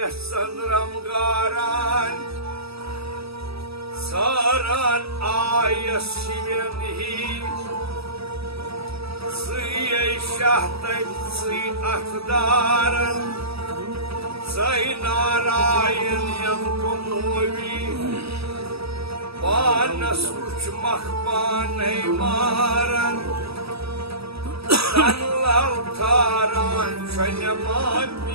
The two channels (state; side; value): late; left; 0.77 ms